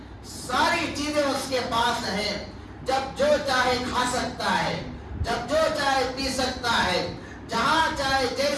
ساری چیزیں اس کے پاس ہیں، جب جو چاہے کھا سکتا ہے، جب جو چاہے پی سکتا ہے، جہاں چاہے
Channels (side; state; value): both; identical; correlation 1.00